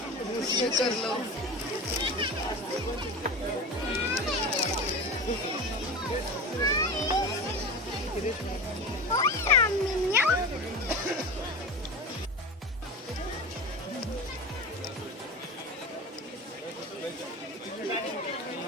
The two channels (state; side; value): normal; both; correlation 0.28